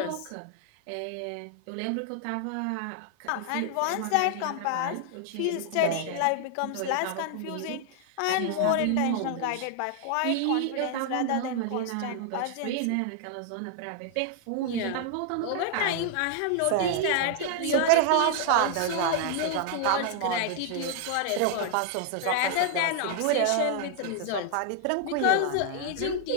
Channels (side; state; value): both; different; correlation 0.00